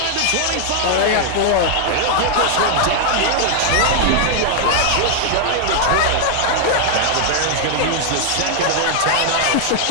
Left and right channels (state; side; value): different; both; correlation 0.00